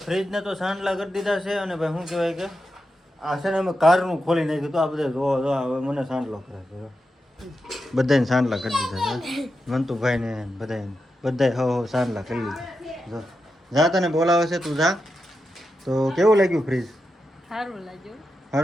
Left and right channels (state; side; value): normal; both; correlation 0.88